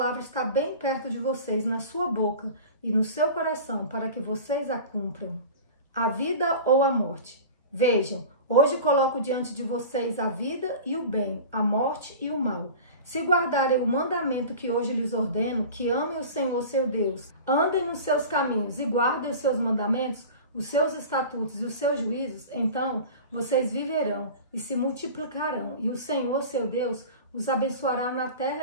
está bem perto de vocês, na sua boca e no seu coração, para que vocês a cumpram. A vida ou a morte. Vejam, hoje coloco diante de vocês a vida e o bem, a morte e o mal. Se guardarem o mandamento que hoje lhes ordeno, que amem o Senhor seu Deus, andem nos seus caminhos e guardem os seus mandamentos, os seus estatutos e os seus juízos, então vocês viverão e se multiplicarão, e o Senhor seu Deus os abençoará na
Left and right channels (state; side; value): inverted; both; correlation -0.36